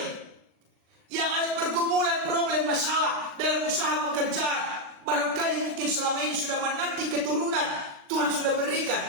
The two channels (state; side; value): late; left; 39 ms